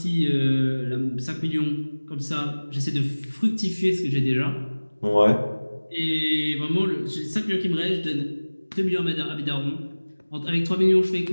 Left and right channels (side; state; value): both; inverted; correlation -1.00